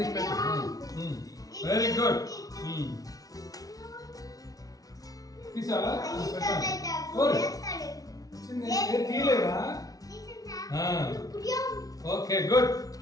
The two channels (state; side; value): late; right; 0.18 ms